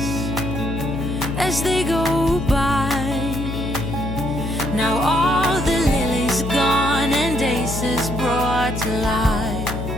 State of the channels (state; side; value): noise; left; hum, 4 dB below the sound